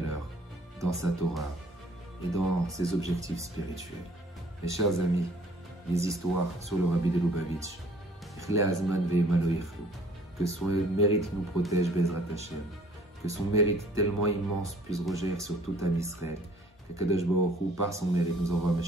dans sa Torah et dans ses objectifs spirituels. Mes chers amis, les histoires sur le Rabbi de Lubavitch, que son mérite nous protège, Be'ezrat Hashem, que son mérite tellement immense puisse rejaillir sur tout Am Israël, que Kadosh Baruch Hu, par son mérite, nous envoie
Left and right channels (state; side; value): normal; both; correlation 0.56